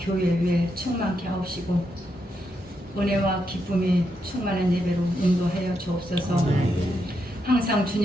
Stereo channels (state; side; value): normal; both; correlation 0.81